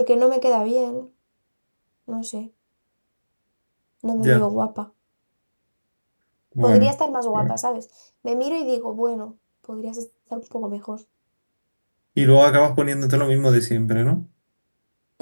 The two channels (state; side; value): inverted; both; correlation -1.00